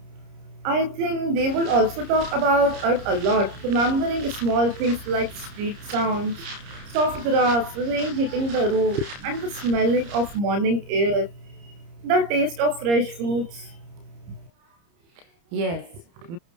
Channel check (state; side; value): late; left; 30 ms